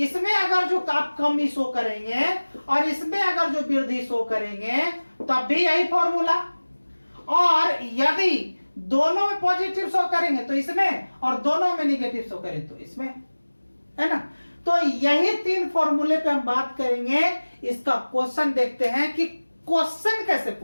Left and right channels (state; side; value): inverted; both; correlation -1.00